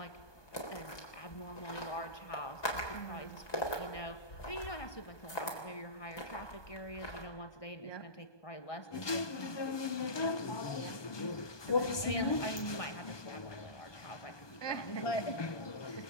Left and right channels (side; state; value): right; late; 1.2 ms